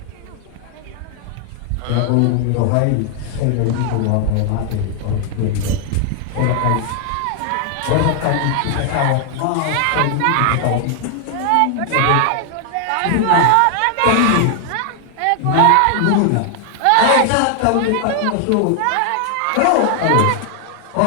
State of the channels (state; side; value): different; both; correlation 0.00